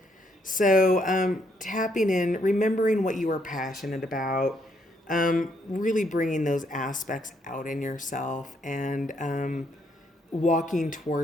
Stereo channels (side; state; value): both; normal; correlation 0.73